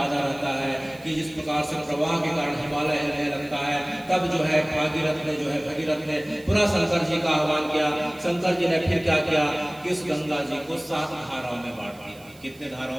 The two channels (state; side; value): noise; right; hiss, 25 dB below the sound